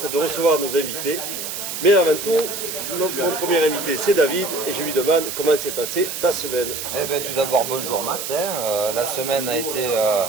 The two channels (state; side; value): noise; right; hiss, 6 dB below the sound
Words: de recevoir nos invités. Mais avant tout, mon premier invité c'est David et je lui demande comment s'est passée ta semaine. Eh bien, tout d'abord bonjour Max, la semaine a été